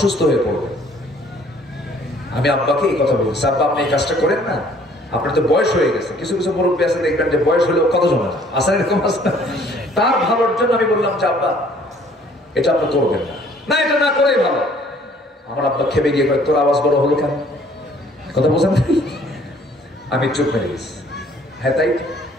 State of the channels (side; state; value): both; normal; correlation 0.58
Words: হয়ে পড়বেন। আমি আব্বাকে এই কথা বলতেছি, আব্বা আপনি এই কাজটা করেন না, আপনার তো বয়স হয়ে গেছে। কিছু কিছু মুরব্বী আছে দেখবেন যে বয়স হলেও কত জমা আসেন, এরকম আছে। তার ভালোর জন্য আমি বললাম যে আব্বা এটা আপনি করবেন না, না এটা না করেই ভালো। আমার আব্বা খেপে গিয়ে কয় তোর আওয়াজ বড় হলো কেন? কথা বোঝেন? আমি চুপ মেরে গেছি। হ্যাঁ তাই